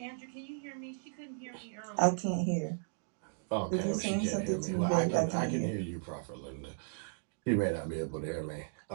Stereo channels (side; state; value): left; silent; digital silence